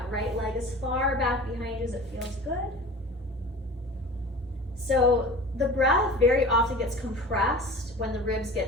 right leg as far back behind you as it feels good. So the breath very often gets compressed when the ribs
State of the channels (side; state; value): both; normal; correlation 0.38